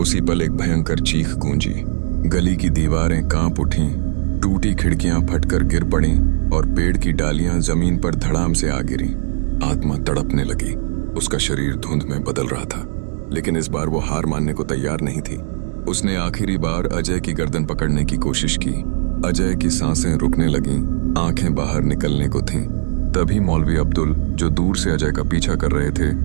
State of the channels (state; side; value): silent; left; digital silence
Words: उसी पल एक भयंकर चीख गूंजी। गली की दीवारें कांप उठीं, टूटी खिड़कियां फटकर गिर पड़ीं और पेड़ की डालियां जमीन पर धड़ाम से आ गिरी। आत्मा तड़पने लगी। उसका शरीर धुंध में बदल रहा था, लेकिन इस बार वो हार मानने को तैयार नहीं थी। उसने आखिरी बार अजय की गर्दन पकड़ने की कोशिश की। अजय की सांसें रुकने लगीं, आंखें बाहर निकलने को थीं। तभी मौलवी अब्दुल, जो दूर से अजय का पीछा कर रहे थे,